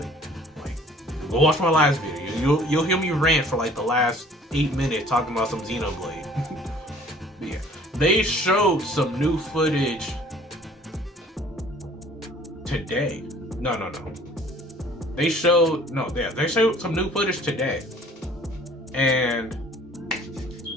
Like, go watch my last video. You'll hear me rant for like the last 8 minutes talking about some Xenoblade. But yeah, they showed some new footage today. No. They showed some new footage today, and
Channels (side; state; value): both; normal; correlation 0.53